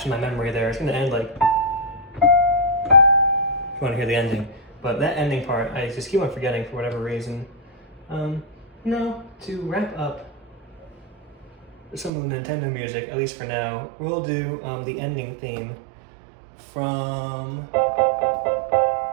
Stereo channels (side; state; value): left; drops out; at 12.1 s